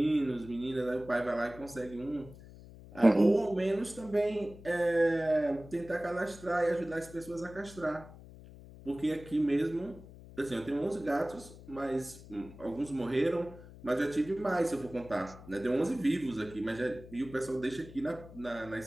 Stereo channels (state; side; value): noise; left; hum, 18 dB below the sound